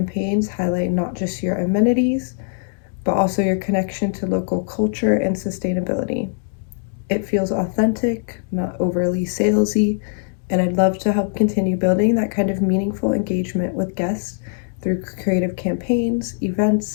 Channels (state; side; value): silent; right; 65 dB below the other